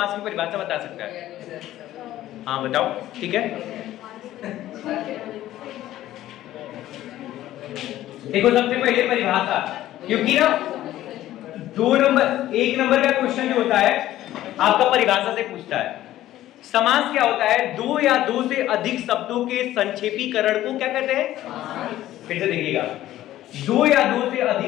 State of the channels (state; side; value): quieter; right; 14.0 dB